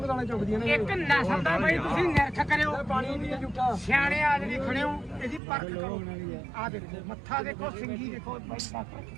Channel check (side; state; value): left; drops out; at 5.4 s